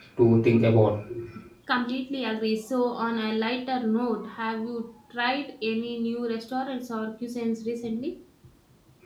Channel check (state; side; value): identical; both; correlation 1.00